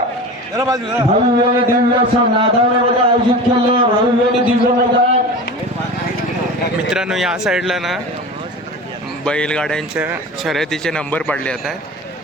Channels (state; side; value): normal; both; correlation 0.32